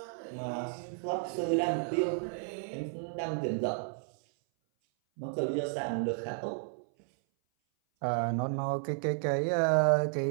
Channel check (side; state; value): left; silent; 56 dB below the other